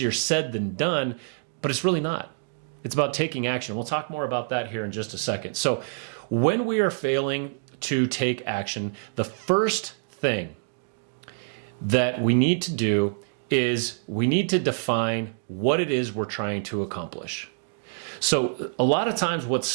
said than done, but it's really not. It's about taking action. We'll talk more about that here in just a second. So when we are failing to take action, the first thing that we need to do is we need to define what it is we're trying to accomplish. So a lot of times what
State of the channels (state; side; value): silent; left; digital silence